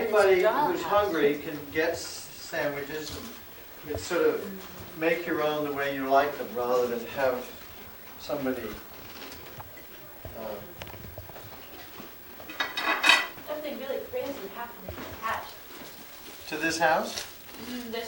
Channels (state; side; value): identical; both; correlation 1.00